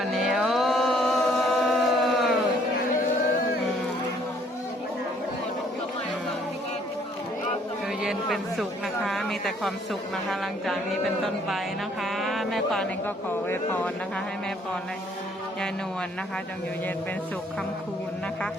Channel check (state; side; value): normal; both; correlation 0.63